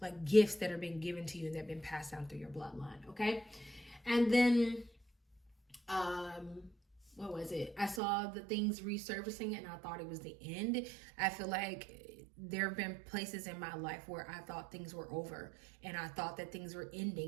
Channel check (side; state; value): left; drops out; at 8.0 s